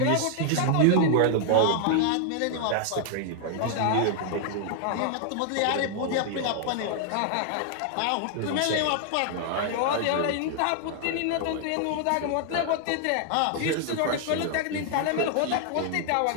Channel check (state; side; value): different; both; correlation 0.00